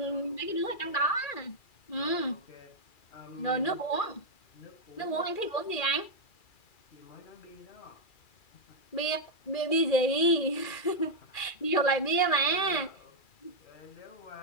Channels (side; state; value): right; late; 2.4 ms